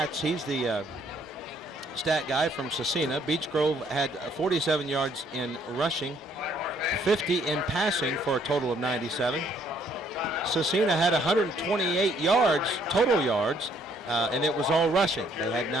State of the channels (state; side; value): normal; both; correlation 0.65